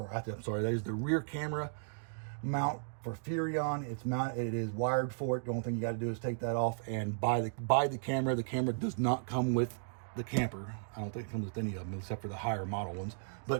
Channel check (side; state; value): left; silent; digital silence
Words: I'm sorry, that is the rear camera mount for Furrion. It's mounted, it is wired for it. The only thing you got to do is take that off and buy the camera. The camera does not come with the camper. I don't think it comes with any of them except for the higher model ones,